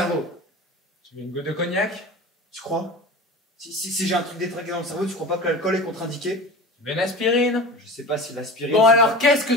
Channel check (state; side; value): normal; both; correlation 0.34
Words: Tu veux une goutte de cognac? Tu crois? Si j'ai un truc détraqué dans le cerveau, tu crois pas que l'alcool est contre-indiqué? Tu veux une aspirine? Je sais pas si l'aspirine... Bon alors, qu'est-ce que